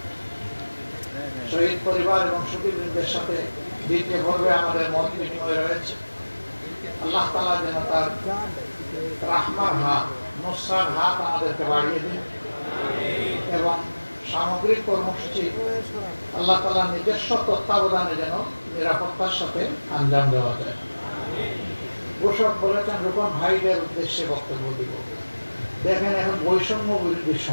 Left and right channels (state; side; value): inverted; both; correlation -1.00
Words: শহীদ পরিবার এবং সুধীবৃন্দের সাথে দ্বিতীয় পর্বে আমাদের মত বিনিময় রয়েছে। আল্লাহ তাআলা যেন তার রাহমার হাত, নুসরার হাত আমাদেরকে বাড়িয়ে দিন এবং সামগ্রিক কর্মসূচি আল্লাহ তাআলা নিজস্ব তত্ত্বাবধানে যেন নিরাপত্তার সাথে আঞ্জাম দেওয়া যায়। ঘোষক বলেছেন রূপন ভাইদের উদ্দেশ্যে বক্তব্য দিব। দেখেন এখন বৈষম্য বিরোধীর